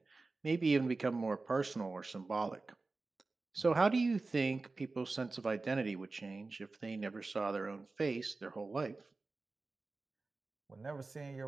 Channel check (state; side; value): quieter; left; 3.6 dB